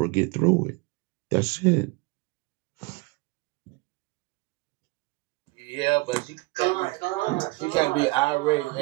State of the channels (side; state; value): left; quieter; 24.5 dB